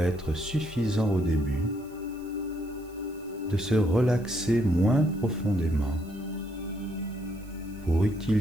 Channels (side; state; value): right; noise; hiss, 27 dB below the sound